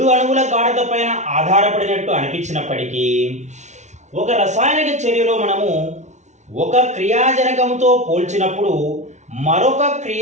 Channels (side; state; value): left; late; 0.33 ms